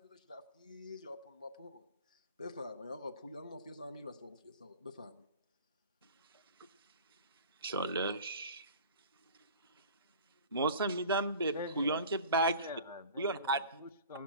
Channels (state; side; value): inverted; both; correlation -0.40